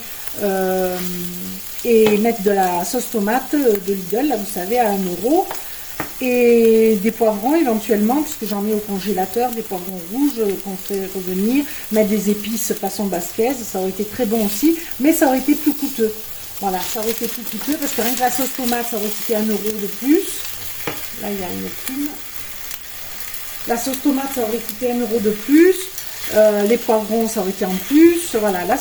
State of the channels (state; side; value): identical; both; correlation 1.00